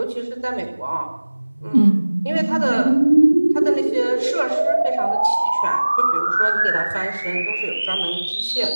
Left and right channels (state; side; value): inverted; both; correlation -1.00